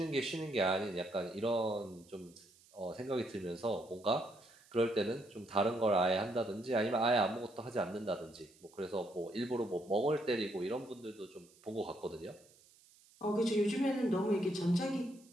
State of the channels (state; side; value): noise; right; hiss, 27 dB below the sound